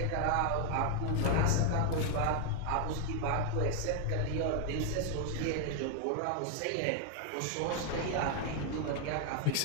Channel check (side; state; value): both; different; correlation 0.00